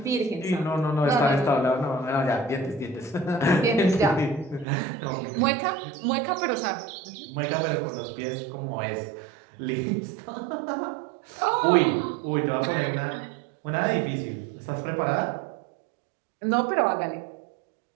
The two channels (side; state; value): left; drops out; at 4.7 s